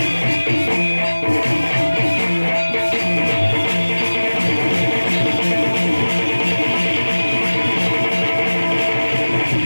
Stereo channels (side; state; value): both; inverted; correlation -1.00